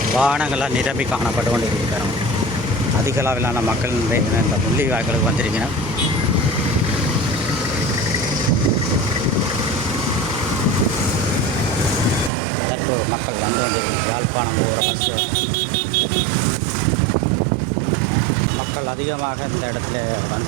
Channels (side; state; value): left; drops out; at 12.3 s